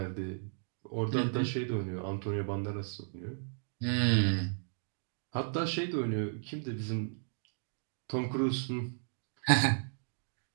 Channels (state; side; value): silent; left; digital silence